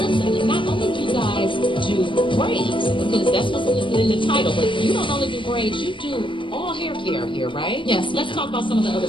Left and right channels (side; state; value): right; late; 0.24 ms